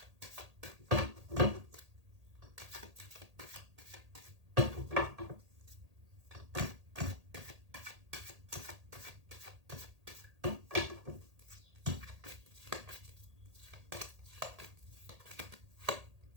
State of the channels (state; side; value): late; left; 1.8 ms